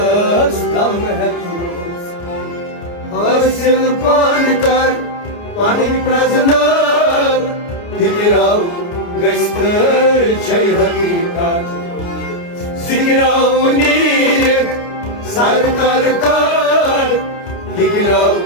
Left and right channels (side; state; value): right; late; 29 ms